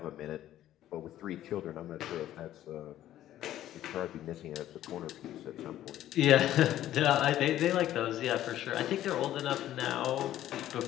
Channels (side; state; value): right; quieter; 12.8 dB